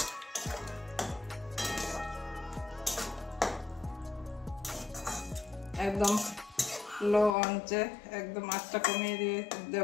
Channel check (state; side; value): drops out; right; at 7.4 s